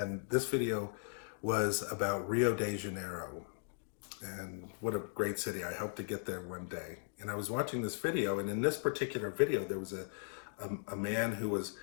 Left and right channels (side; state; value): right; silent; digital silence